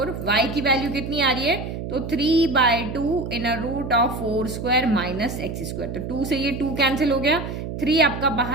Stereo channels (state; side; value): noise; right; hum, 6 dB below the sound